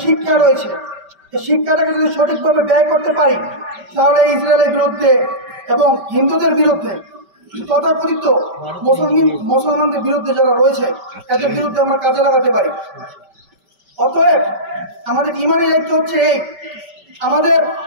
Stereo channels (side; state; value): left; late; 5.2 ms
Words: শিক্ষা রয়েছে, এই শিক্ষাটাকে যদি সঠিকভাবে ব্যয় করতে পারি, তাহলে ইসরায়েলের বিরুদ্ধে এবং হিন্দুদের বিরুদ্ধে, তথাকথিত মুসলমানদের বিরুদ্ধে যারা রয়েছে, এদের বিরুদ্ধে আমরা কাজে লাগাতে পারি। অতএব আমাদের ইমানি দায়িত্ব হচ্ছে এই, আমাদের